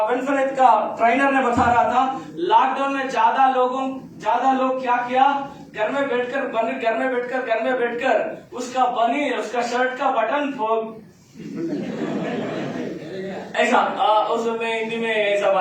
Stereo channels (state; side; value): identical; both; correlation 1.00